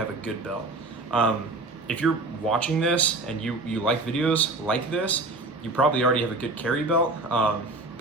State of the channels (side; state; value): left; quieter; 3.1 dB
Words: a good belt. If you're watching this and you like videos like this, you probably already have a good carry belt,